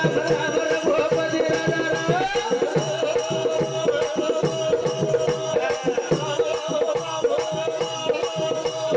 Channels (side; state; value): both; identical; correlation 1.00